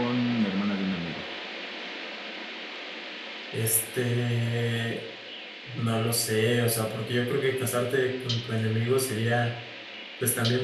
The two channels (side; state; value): both; identical; correlation 1.00